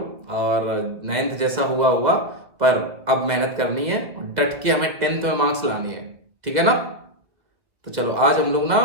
और 9th जैसा हुआ हुआ, पर अब मेहनत करनी है और डट के हमें 10th में मार्क्स लाने हैं, ठीक है ना। तो चलो आज हम लोग ना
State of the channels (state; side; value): late; left; 1.9 ms